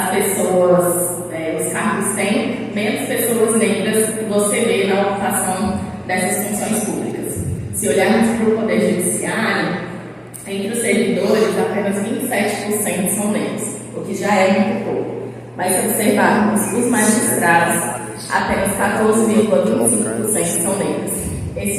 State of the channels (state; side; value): identical; both; correlation 1.00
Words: pessoas, os cargos têm, menos pessoas negras você vê na ocupação dessas funções públicas. Se olharmos para o Poder Judiciário, entre os servidores, apenas 27% são negros, o que já é muito pouco. Mas se observarmos os magistrados, apenas 14,25% são negros.